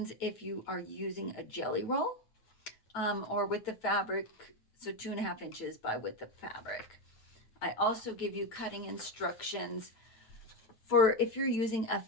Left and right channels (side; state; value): right; late; 9.0 ms